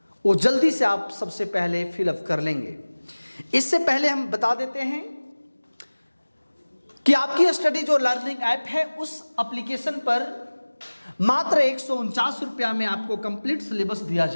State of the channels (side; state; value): both; inverted; correlation -1.00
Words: वो जल्दी से आप सबसे पहले फिलअप कर लेंगे। इससे पहले हम बता देते हैं कि आपकी स्टडी जो लर्निंग ऐप है, उस एप्लीकेशन पर मात्र 149 रुपया में आपको कंप्लीट सिलेबस दिया